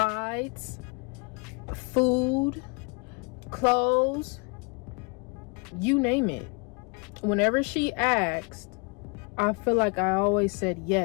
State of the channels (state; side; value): quieter; right; 32.4 dB